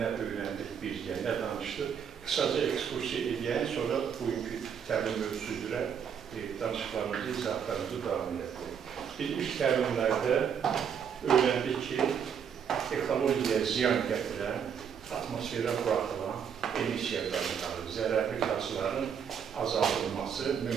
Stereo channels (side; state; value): left; quieter; 7.6 dB